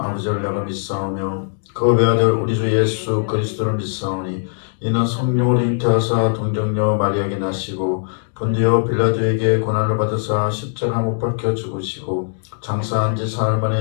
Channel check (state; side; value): silent; right; digital silence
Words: 내가 믿사오며 그 외아들 우리 주 예수 그리스도를 믿사오니 이는 성령으로 잉태하사 동정녀 마리아에게 나시고 본디오 빌라도에게 고난을 받으사 십자가 못 박혀 죽으시고 장사한 지 사흘